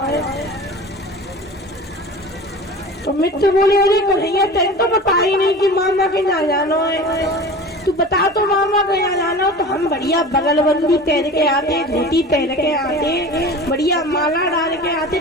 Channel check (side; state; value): both; normal; correlation 0.36